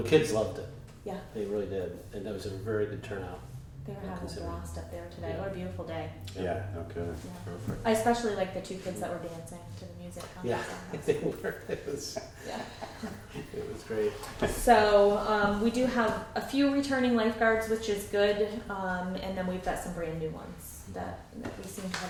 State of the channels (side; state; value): both; identical; correlation 1.00